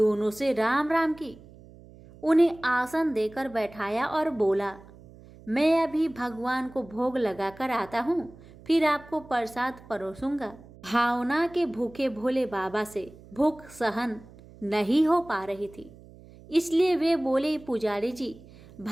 से राम राम की, उन्हें आसन देकर बैठाया और बोला, मैं अभी भगवान को भोग लगाकर आता हूँ, फिर आपको प्रसाद परोसूंगा। भावना के भूखे भोले बाबा से भूख सहन नहीं हो पा रही थी, इसलिए वे बोले, पुजारी जी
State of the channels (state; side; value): noise; right; hum, 21 dB below the sound